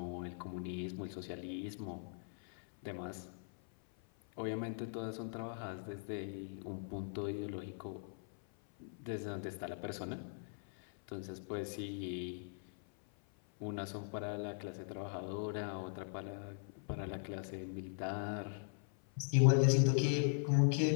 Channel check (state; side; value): silent; right; 51 dB below the other